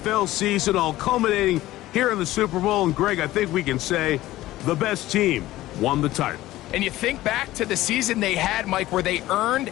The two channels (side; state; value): right; quieter; 16.1 dB